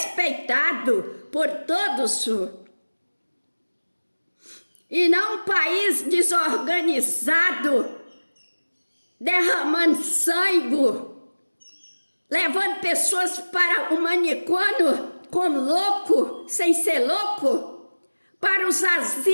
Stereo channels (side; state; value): both; inverted; correlation -1.00